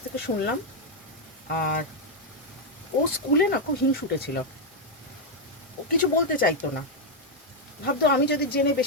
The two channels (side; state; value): both; normal; correlation 0.01